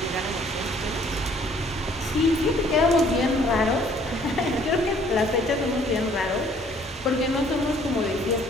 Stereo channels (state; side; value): normal; both; correlation 0.59